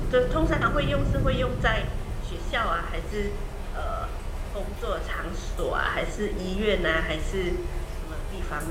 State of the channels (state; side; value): identical; both; correlation 1.00